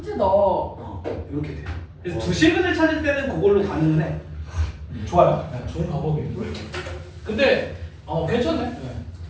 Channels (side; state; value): both; identical; correlation 1.00